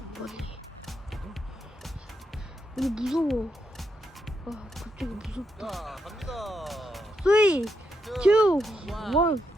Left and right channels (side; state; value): both; normal; correlation 0.81